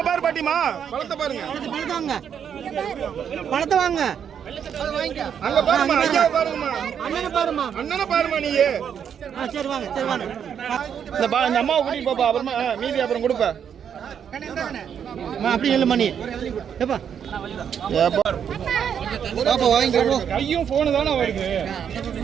பாரு பாட்டிமா பழத்தை பாருங்க பழத்தை வாங்க அங்க பாருமா ஐயா பாருங்கம்மா அண்ணனை பாருமா நீ சரி வாங்க சரி வாங்க இந்த அம்மாவை கூட்டிட்டு போப்பா அப்புறமா மீதி அப்புறம் கொடுப்ப அப்படி இல்லை மணி ஏப்பா வாங்கி கையும் போனு தானே வருது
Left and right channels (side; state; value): left; quieter; 8.1 dB